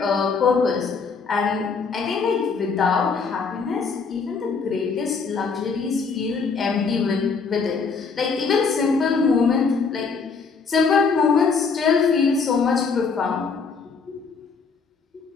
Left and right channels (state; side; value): quieter; right; 5.1 dB